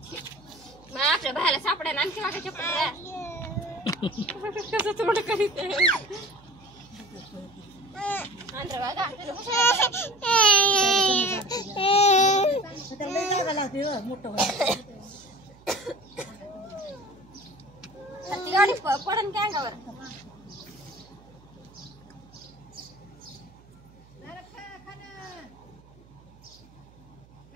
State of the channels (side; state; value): right; noise; hum, 26 dB below the sound